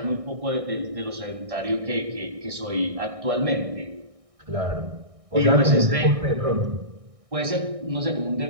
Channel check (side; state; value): left; late; 1.6 ms